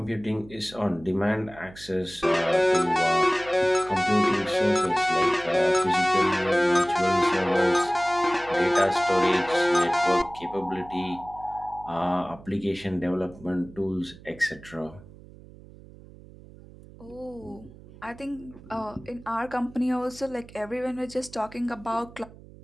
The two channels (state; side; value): noise; right; hum, 20 dB below the sound